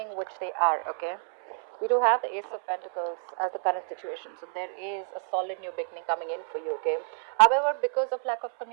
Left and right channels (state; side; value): silent; left; 59 dB below the other